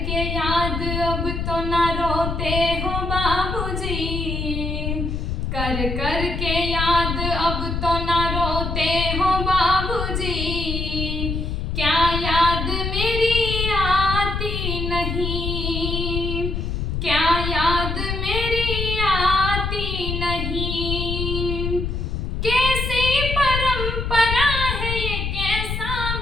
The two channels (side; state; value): left; noise; rumble, 2 dB below the sound